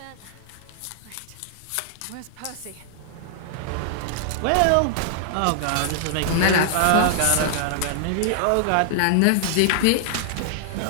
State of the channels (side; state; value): both; different; correlation -0.01